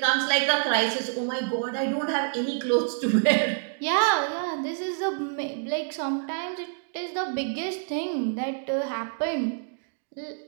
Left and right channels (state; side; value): silent; left; digital silence